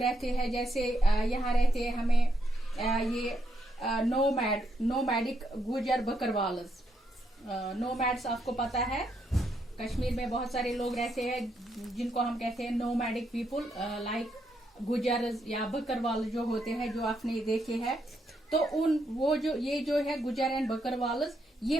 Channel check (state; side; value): normal; both; correlation 0.78